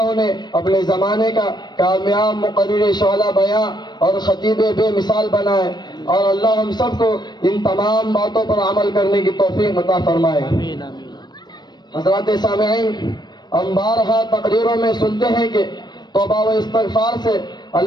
نے اپنے زمانے کا کامیاب مقرر شعلہ بیاں اور خطیب بے مثال بنائے، اور اللہ ہم سب کو ان تمام باتوں پر عمل کرنے کی توفیق عطا فرمائے۔ حضرات سامعین، ہم بارہا تقریروں میں سنتے ہیں کہ توبہ و استغفار سے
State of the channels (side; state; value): right; late; 0.21 ms